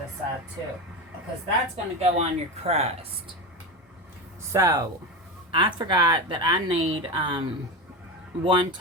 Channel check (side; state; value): both; normal; correlation 0.20